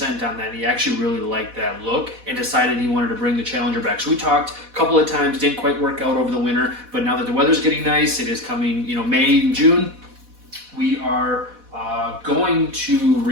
on that. He actually really liked that look and decided he wanted to bring the Challenger back. So we talked a couple of times, didn't quite work out over the winter, but now that the weather's getting nice, it is coming, May and June, we are going to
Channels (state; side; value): late; left; 4.1 ms